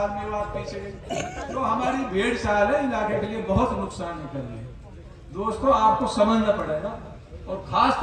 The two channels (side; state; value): both; identical; correlation 1.00